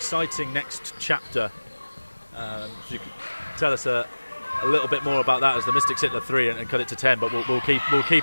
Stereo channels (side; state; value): both; inverted; correlation -1.00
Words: next chapter. If you could tell us a little bit more about that as the Mystics hit the 3 and cut it to 10, but we'll